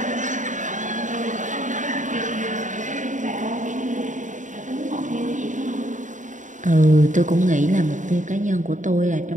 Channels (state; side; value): late; left; 0.36 ms